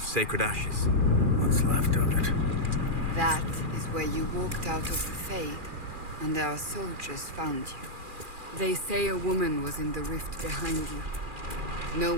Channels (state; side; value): late; left; 2.4 ms